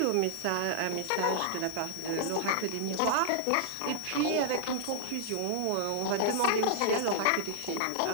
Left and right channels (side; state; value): both; different; correlation -0.01